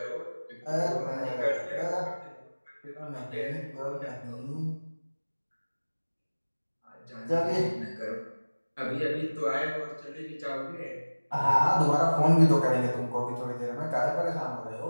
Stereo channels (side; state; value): both; inverted; correlation -1.00